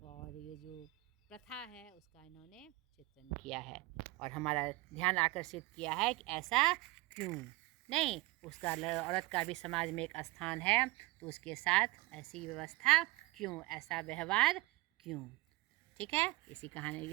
और ये जो प्रथा है उसका इन्होंने चित्रण किया है और हमारा ध्यान आकर्षित किया है कि ऐसा क्यों नहीं, उसका औरत का भी समाज में एक स्थान है, तो उसके साथ ऐसी व्यवस्था क्यों, ऐसा व्यवहार क्यों। ठीक है,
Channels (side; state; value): left; quieter; 20.9 dB